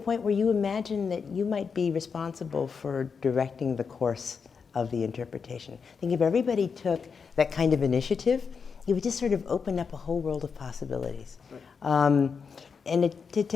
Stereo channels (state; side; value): quieter; right; 5.8 dB